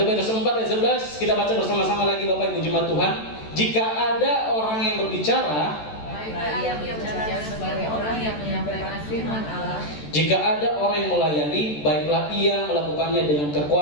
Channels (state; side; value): late; right; 14 ms